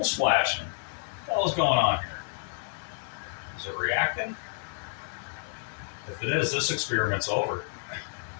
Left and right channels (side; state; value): right; silent; 58 dB below the other